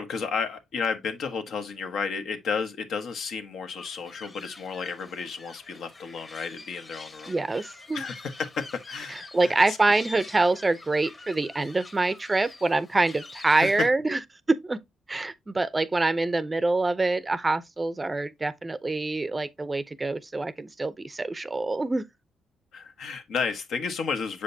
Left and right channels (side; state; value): both; normal; correlation 0.91